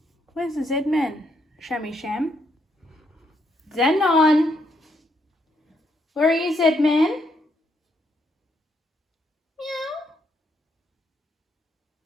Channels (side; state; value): both; normal; correlation 0.75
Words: Where's the Z-Man? Shammy Sham? Zenon! Where are you, Z-Man? Meow.